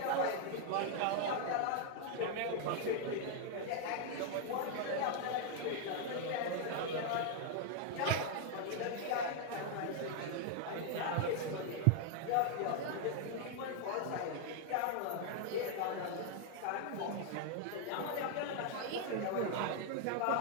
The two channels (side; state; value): both; different; correlation 0.00